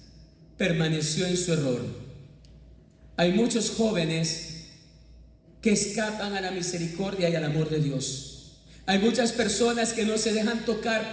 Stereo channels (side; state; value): both; identical; correlation 1.00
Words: permaneció en su error. Hay muchos jóvenes que escapan a la misericordia y al amor de Dios. Hay muchas personas que no se dejan tocar